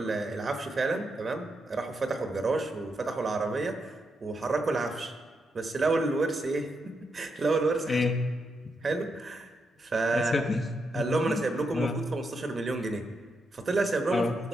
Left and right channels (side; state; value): both; normal; correlation 0.82